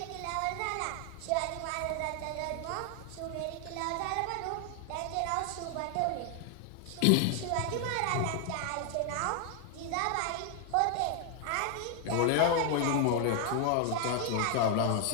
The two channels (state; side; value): different; both; correlation 0.00